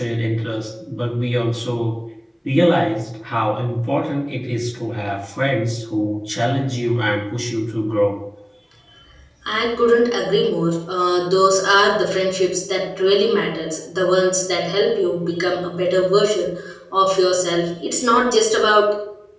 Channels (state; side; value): identical; both; correlation 1.00